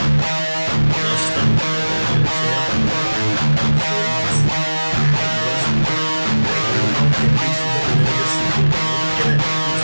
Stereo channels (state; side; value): inverted; both; correlation -1.00